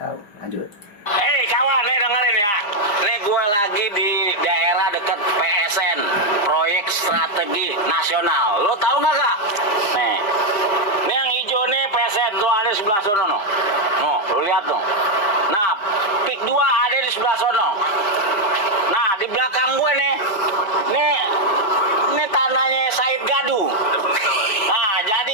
Lanjut. Hei kawan, nih dengerin ya. Nih gue lagi di daerah dekat PSN, proyek strategi nasional. Lo tahu nggak kak? Nih yang hijau nih PSN tuh ada di sebelah sono no. No, lo lihat tuh. Nah, Pick 2 ada di sebelah sono. Nah, di belakang gue nih tanahnya Said Gadu. Nah,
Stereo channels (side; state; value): right; late; 5.1 ms